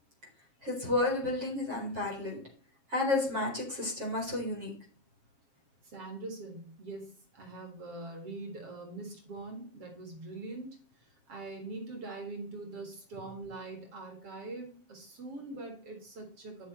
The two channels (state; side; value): late; left; 7.4 ms